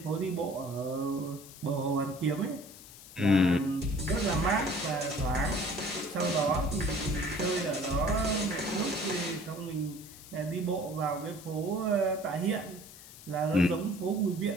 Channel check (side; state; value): left; noise; hiss, 18 dB below the sound